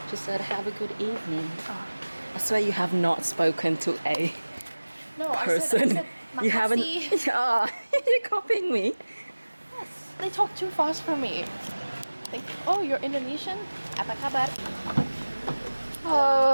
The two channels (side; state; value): both; inverted; correlation -1.00